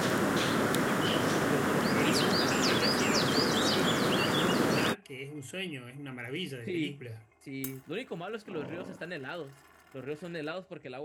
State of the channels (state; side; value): identical; both; correlation 1.00